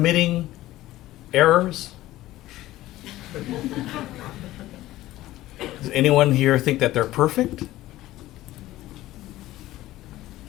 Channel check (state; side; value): quieter; right; 15.9 dB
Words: errors? Does anyone here think that they're perfect?